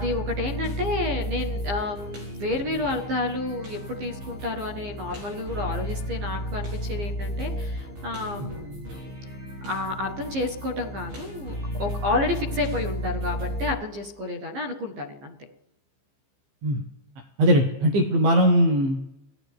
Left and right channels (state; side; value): late; left; 15 ms